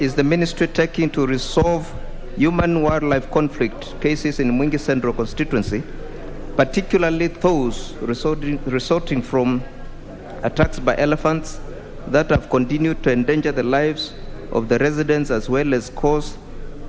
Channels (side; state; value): both; identical; correlation 1.00